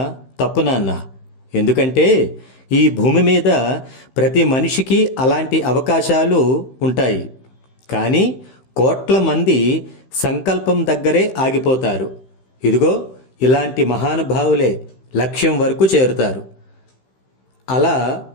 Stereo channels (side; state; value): right; late; 15 ms